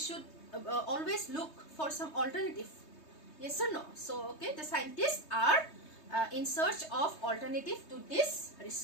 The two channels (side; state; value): right; late; 3.2 ms